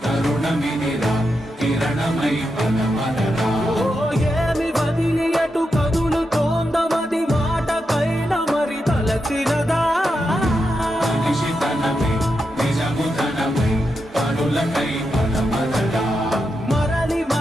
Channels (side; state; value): both; normal; correlation 0.86